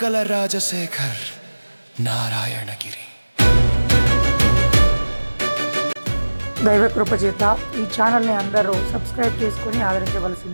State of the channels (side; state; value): both; inverted; correlation -1.00